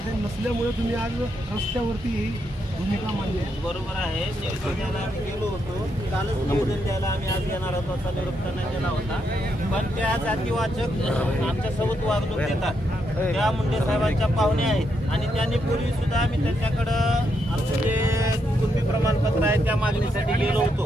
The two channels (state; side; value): normal; both; correlation 0.80